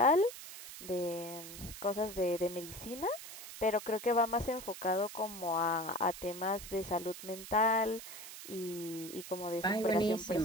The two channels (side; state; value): right; noise; hiss, 12 dB below the sound